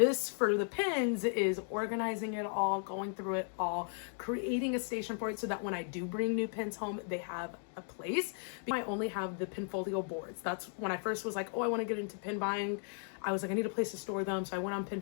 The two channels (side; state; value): right; silent; 54 dB below the other